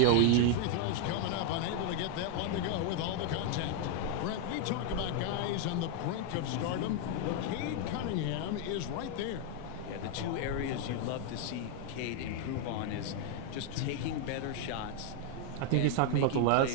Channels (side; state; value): both; different; correlation 0.00